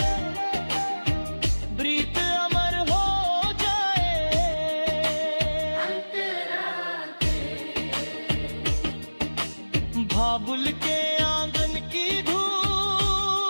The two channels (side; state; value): both; inverted; correlation -1.00